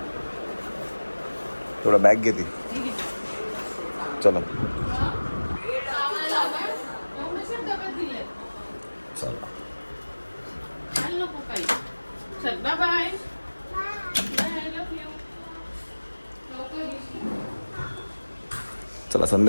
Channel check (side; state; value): both; inverted; correlation -1.00